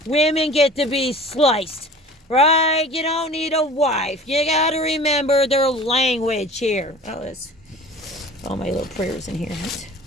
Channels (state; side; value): normal; both; correlation 0.42